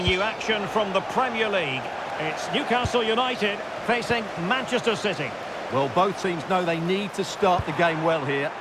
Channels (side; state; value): both; identical; correlation 1.00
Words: you action from the Premier League. It's Newcastle United facing Manchester City. Well, both teams know they need to start the game well here.